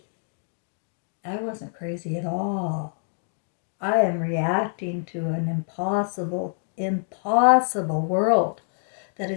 I wasn't crazy at all. I am reacting to an impossible world that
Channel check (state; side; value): silent; right; digital silence